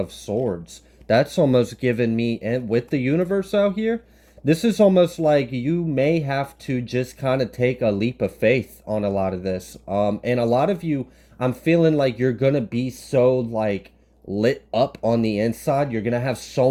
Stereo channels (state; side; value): identical; both; correlation 1.00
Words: Swords. That's almost given me, and with the universe out here, this is almost like you may have to just kind of take a leap of faith on a lot of this. And a lot of you, I'm feeling like you're gonna be so like lit up on the inside. You're gonna have